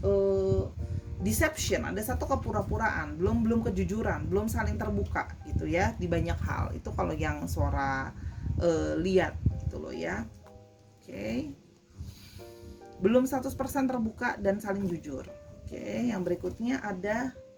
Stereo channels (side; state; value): both; identical; correlation 1.00